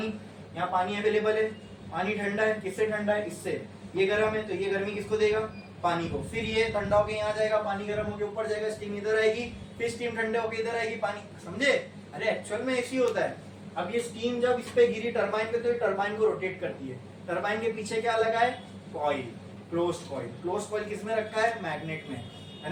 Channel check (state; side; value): identical; both; correlation 1.00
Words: यहाँ पानी अवेलेबल है, पानी ठंडा है, किससे ठंडा है? इससे। ये गर्म है, तो ये गर्मी किसको देगा? पानी को। फिर ये ठंडा होके यहाँ जाएगा, पानी गर्म होके ऊपर जाएगा, स्टीम इधर आएगी, फिर स्टीम ठंडे होके इधर आएगी, पानी। समझे? अरे एक्चुअल में ऐसी होता है। अब ये स्टीम जब इस पे गिरी टरबाइन पे, तो ये टरबाइन को रोटेट करती है। टरबाइन के पीछे क्या लगा है? Coil, closed coil. Closed coil किसमें रखा है? मैग्नेट में, है